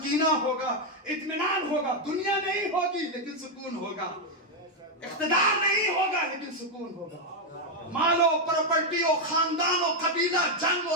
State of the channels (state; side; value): normal; both; correlation 0.01